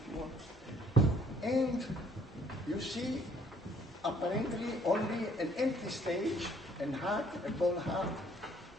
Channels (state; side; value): normal; both; correlation 0.61